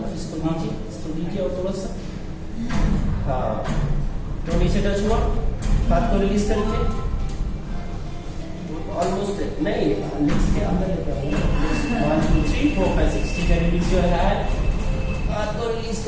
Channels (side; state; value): both; identical; correlation 1.00